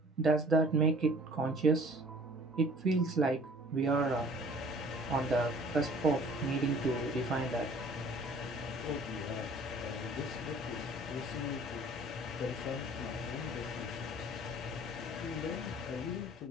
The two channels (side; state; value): both; normal; correlation 0.51